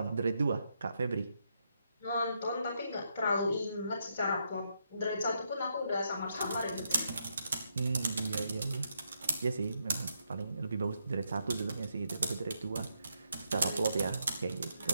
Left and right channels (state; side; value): inverted; both; correlation -0.79